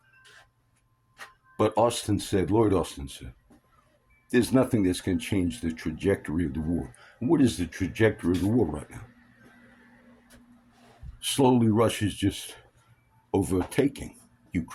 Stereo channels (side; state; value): both; identical; correlation 1.00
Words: But Lloyd Austin said, there's nothing that's going to change the trajectory of the war. And what is the trajectory of the war right now? Slowly, Russia's just overtaking